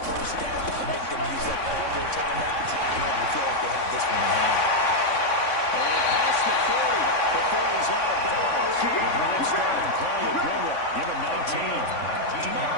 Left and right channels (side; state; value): right; late; 3.6 ms